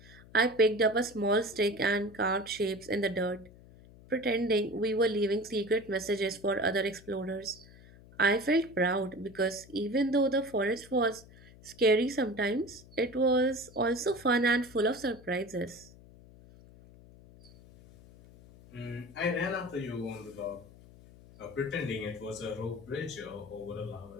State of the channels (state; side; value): noise; left; hum, 22 dB below the sound